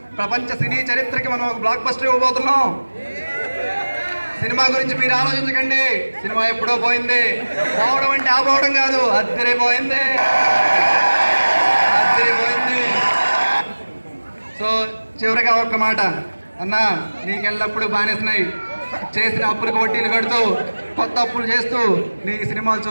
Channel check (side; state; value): both; inverted; correlation -1.00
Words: ప్రపంచ సినీ చరిత్రకి మనం ఒక బ్లాక్ బస్టర్ ఇవ్వబోతున్నాం. సినిమా గురించి మీరు ఆలోచించకండి, సినిమా ఎప్పుడో పోయింది. పోవడం అంటే ఆపోవడం కాదు, అద్దరిపోయింది. సో చివరిగా ఒక్క మాట, అన్న నీకెళ్ళప్పుడు బానేసినాయి, చేసిన అప్పులకు వడ్డీలు కడుతూ కొత్త అప్పులు చేస్తూ నీ సినిమాలు